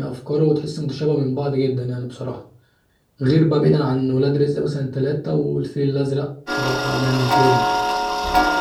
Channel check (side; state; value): both; identical; correlation 1.00